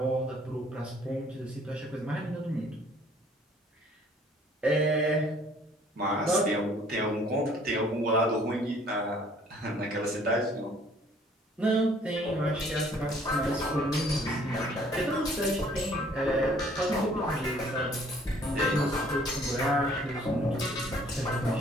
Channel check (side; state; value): both; normal; correlation 0.58